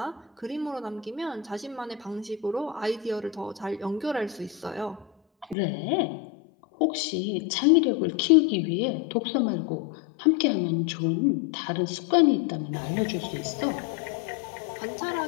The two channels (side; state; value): right; drops out; at 5.6 s